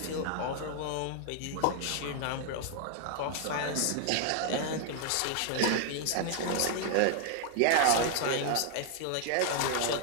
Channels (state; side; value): different; both; correlation 0.00